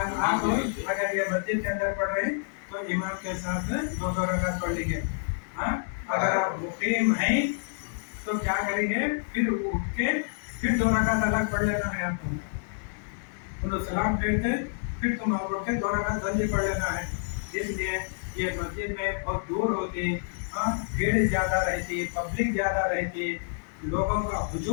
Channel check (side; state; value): right; silent; digital silence